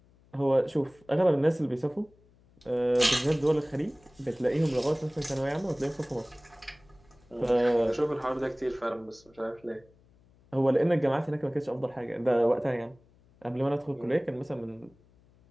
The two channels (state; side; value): noise; left; hum, 30 dB below the sound